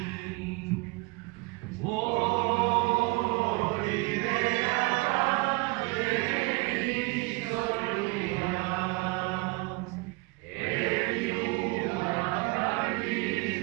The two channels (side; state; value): left; quieter; 25.3 dB